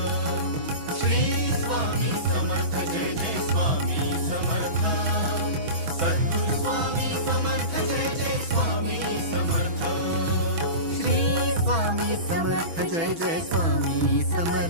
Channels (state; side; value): late; left; 6.1 ms